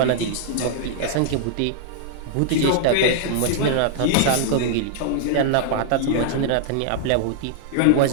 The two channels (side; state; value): both; different; correlation -0.01